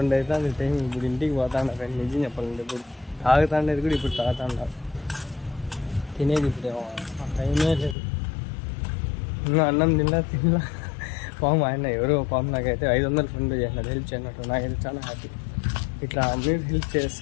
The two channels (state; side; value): drops out; right; at 8.0 s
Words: అవుతుంది టైం. ఇప్పుడు ఇంటికి పోతాను ఫ్రెండ్. నిజం చెప్పాలంటే ఇప్పుడు తాగుతాండేది కూడా ఇప్పుడు తాగుతాండ. తినేది ఇప్పుడు టైమే లేదు. ఇంకా అన్నం తినలా పాము ఆయన ఎవరో పాము నాకైతే 500 ఫోన్పే చేసినాడు హెల్ప్ చేయనట్టు. నాకైతే చాలా హ్యాపీ. ఇట్లా మీరు హెల్ప్